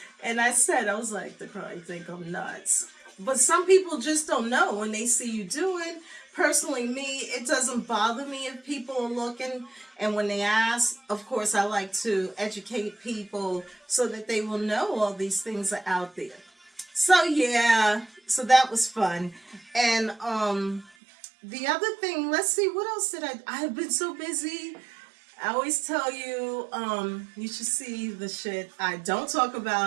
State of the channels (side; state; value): left; drops out; at 20.9 s